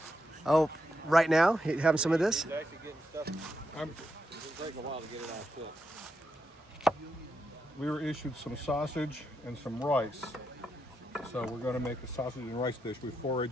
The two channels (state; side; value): normal; both; correlation 0.83